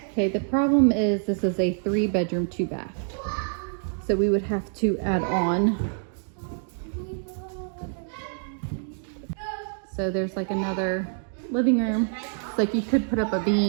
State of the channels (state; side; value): silent; left; digital silence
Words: Okay, the problem is this is a 3-bedroom, 2-bath. So we would have to add on. So there's like another living room. It's like you could put up a